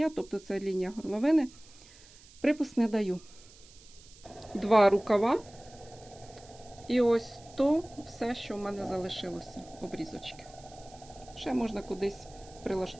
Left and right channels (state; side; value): noise; right; hiss, 23 dB below the sound